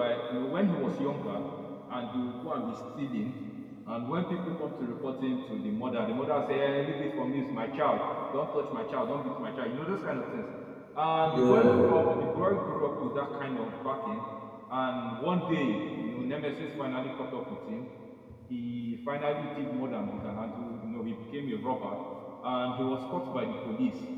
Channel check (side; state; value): both; identical; correlation 1.00